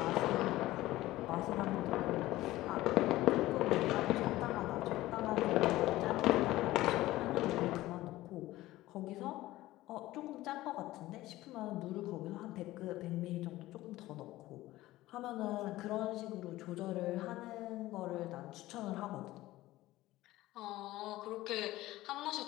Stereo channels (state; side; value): quieter; right; 16.8 dB